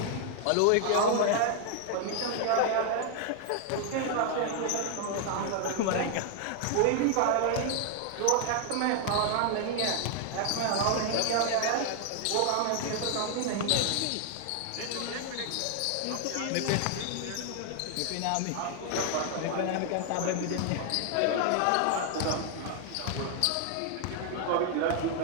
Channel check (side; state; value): both; different; correlation 0.00